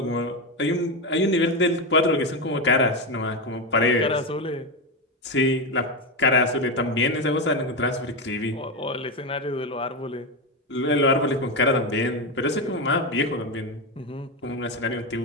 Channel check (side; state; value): both; normal; correlation 0.12